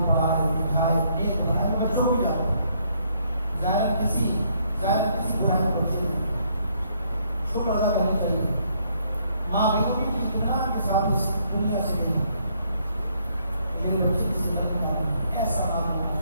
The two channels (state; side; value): inverted; both; correlation -0.70